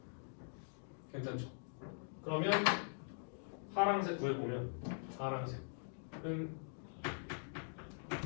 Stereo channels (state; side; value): silent; right; digital silence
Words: 괜찮죠? 그러면 파란색 구해보면 파란색은